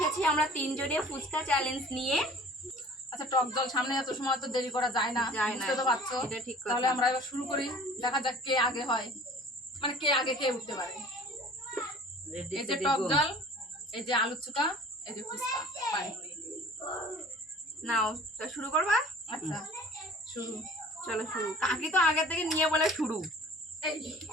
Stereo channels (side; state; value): both; normal; correlation 0.47